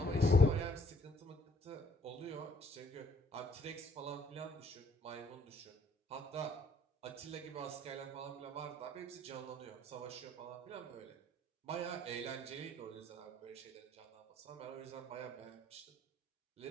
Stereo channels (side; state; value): both; normal; correlation 0.64